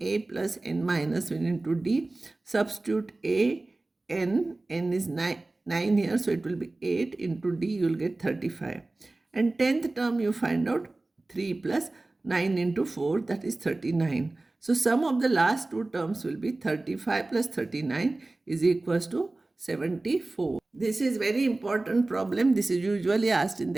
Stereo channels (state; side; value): quieter; left; 3.0 dB